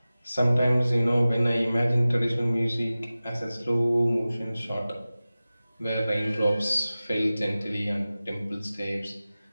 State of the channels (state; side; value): inverted; both; correlation -0.97